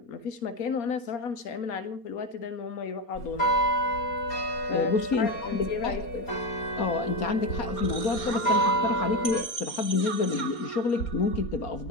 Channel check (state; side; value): late; right; 4.3 ms